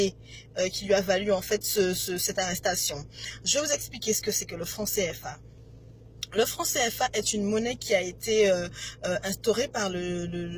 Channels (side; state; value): both; identical; correlation 1.00